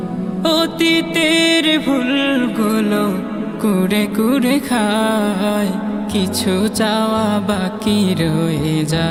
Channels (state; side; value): identical; both; correlation 1.00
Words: অতীতের ভুলগুলো কুড়ে কুড়ে খায়, কিছু চাওয়া বাকি রয়ে